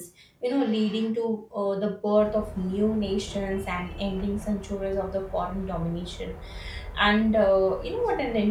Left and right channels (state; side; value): identical; both; correlation 1.00